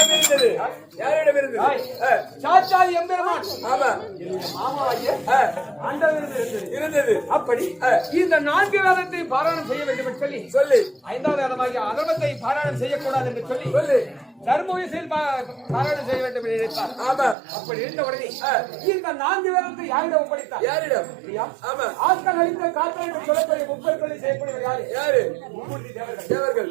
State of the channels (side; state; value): left; drops out; at 17.4 s